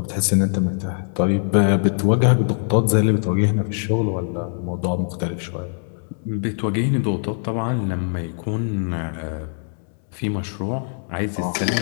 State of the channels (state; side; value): silent; right; digital silence